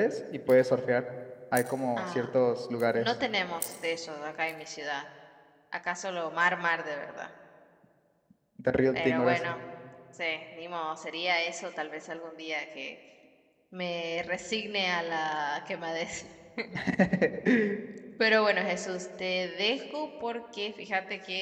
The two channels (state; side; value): identical; both; correlation 1.00